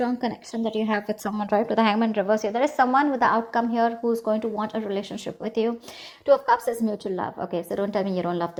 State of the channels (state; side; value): identical; both; correlation 1.00